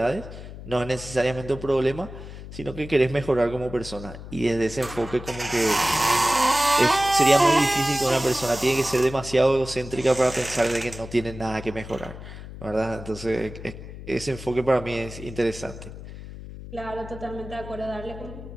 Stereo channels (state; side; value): noise; left; hum, 13 dB below the sound